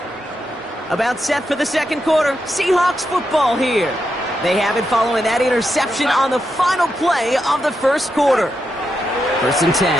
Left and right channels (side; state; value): both; normal; correlation 0.85